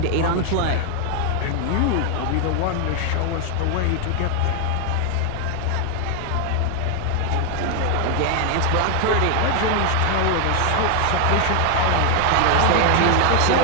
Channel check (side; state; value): both; different; correlation 0.00